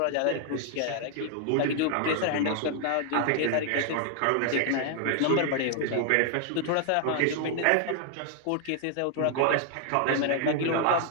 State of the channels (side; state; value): both; different; correlation 0.00